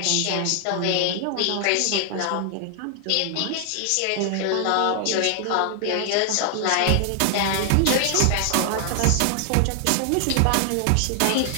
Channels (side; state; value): both; different; correlation 0.00